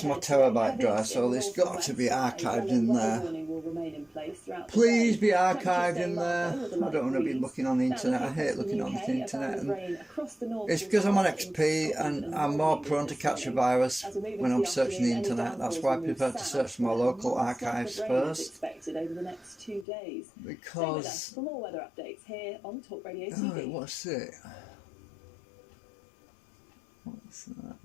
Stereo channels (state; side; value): drops out; right; at 19.9 s